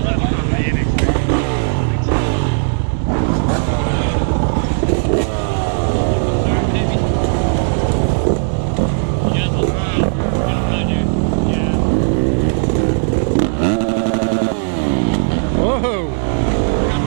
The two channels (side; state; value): left; silent; digital silence